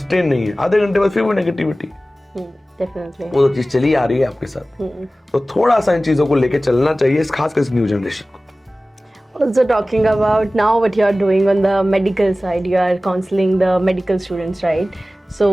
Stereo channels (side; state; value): both; normal; correlation 0.97